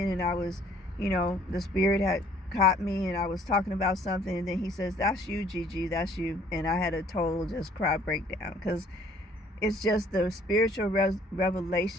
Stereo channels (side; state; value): both; normal; correlation 0.59